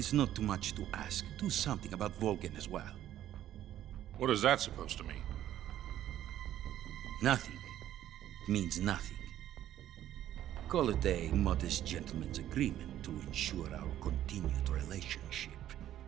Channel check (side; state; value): left; quieter; 12.1 dB